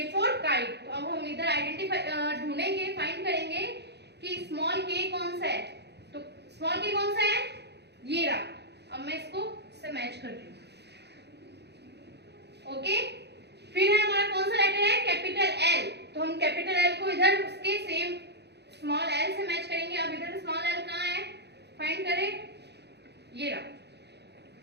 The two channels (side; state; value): left; late; 0.49 ms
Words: फॉर काइट. तो अब हम इधर आइडेंटिफाई ढूंढेंगे, फाइंड करेंगे कि स्मॉल के कौन सा है. तो स्मॉल के कौन सा है? ये रहा. अब मैं इसको से मैच कर रही हूँ. ओके, फिर है हमारा कौन सा लेटर है? Capital L. तो हम कैपिटल एल को इधर उसके सेम स्मॉल एल से मैच करेंगे. अब इधर स्मॉल एल कहाँ है? फाइंड करें. ये रहा.